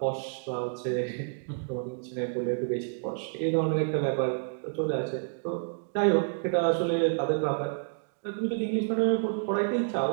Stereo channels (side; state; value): left; silent; digital silence